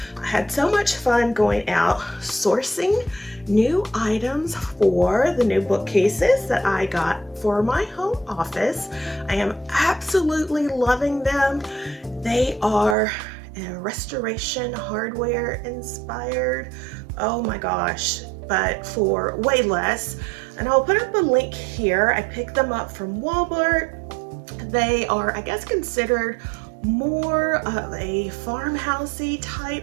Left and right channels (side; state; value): left; drops out; at 13.0 s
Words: I had so much fun going out sourcing new items for the new bookcases that I got for my home office. I am absolutely loving them. They are restoration hardware inspired. Oh my gosh, but for way less. And I'll put up a link here. I picked them up from Walmart. They are, I guess, considered more of a farmhousey